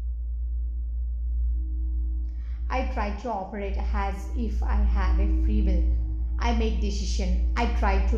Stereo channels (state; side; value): identical; both; correlation 1.00